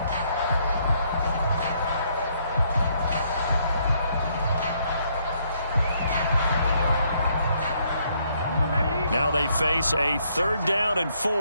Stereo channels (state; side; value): inverted; both; correlation -0.71